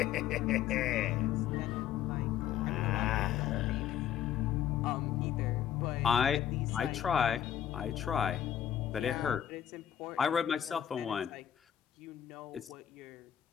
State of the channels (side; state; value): right; quieter; 10.2 dB